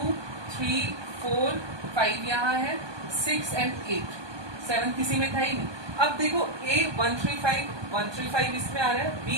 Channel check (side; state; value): left; late; 1.2 ms